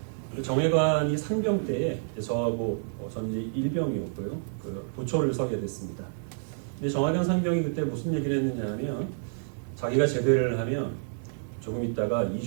그 정혜관이 상병 때에 저하고 전 이제 일병이었고요. 그 보초를 서게 됐습니다. 근데 정혜관 상병이 그때 무슨 얘기를 했느냐면 자기가 제대를 하면 조금 있다가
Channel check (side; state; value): left; silent; digital silence